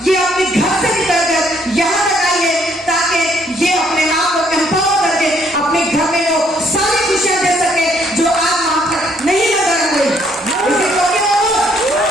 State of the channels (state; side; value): normal; both; correlation 0.67